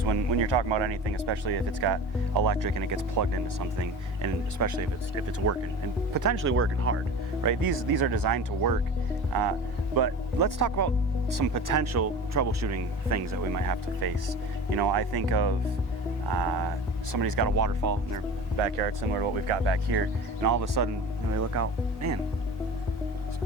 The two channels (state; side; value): normal; both; correlation 0.35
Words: when you're talking about anything, especially if it's got electric and it gets plugged into something, and especially if it's working and potentially working hard, right? These are designed to work, but let's talk about some potential troubleshooting things that we might have to face. You know, I think of somebody's got a waterfall in their backyard, similar to what we've got back here, and all of a sudden, you know, they look out, man, it's